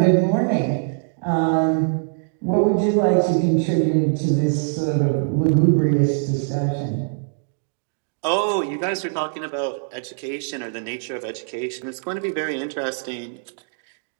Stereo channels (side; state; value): left; silent; digital silence